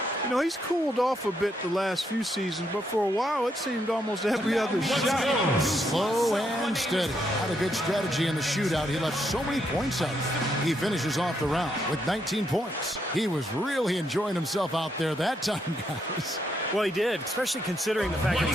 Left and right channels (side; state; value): both; normal; correlation 0.77